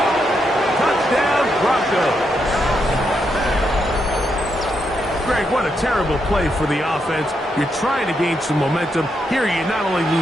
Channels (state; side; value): normal; both; correlation 0.81